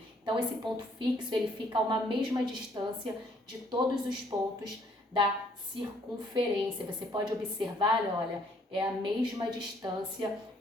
Então, esse ponto fixo, ele fica a uma mesma distância de todos os pontos da circunferência. Você pode observar, olha, é a mesma distância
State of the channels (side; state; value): both; normal; correlation 0.64